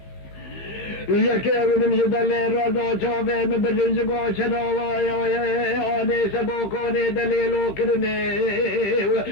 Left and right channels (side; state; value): right; late; 15 ms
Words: يكي ونمزد اللي رضا شافي مبرنزقو شداوايا آني سبوكوني دليلو كرني